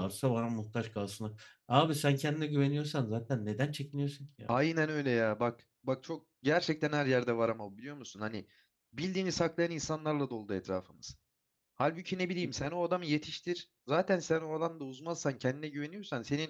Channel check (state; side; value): identical; both; correlation 1.00